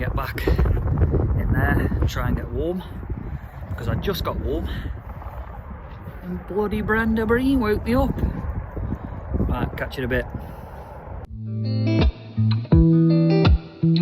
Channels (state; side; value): identical; both; correlation 1.00